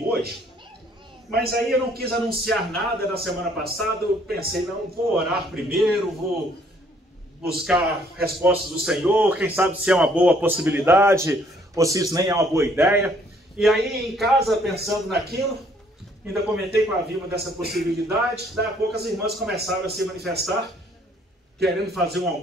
hoje. Mas aí eu não quis anunciar nada na semana passada, eu pensei, não, vou orar primeiro, vou buscar respostas do Senhor, quem sabe se é uma boa possibilidade ou se isso nem é uma boa ideia. E aí, em casa, pensando naquilo, ainda comentei com a Vilma dessa possibilidade. Daí a pouco as irmãs começaram a se manifestar, querendo fazer um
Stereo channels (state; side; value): normal; both; correlation 0.63